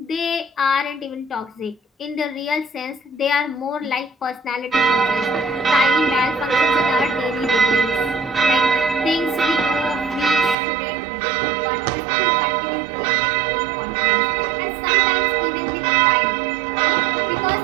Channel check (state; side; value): drops out; left; at 10.6 s